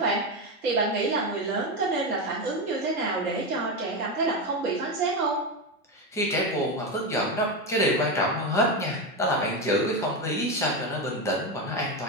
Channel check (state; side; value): normal; both; correlation 0.13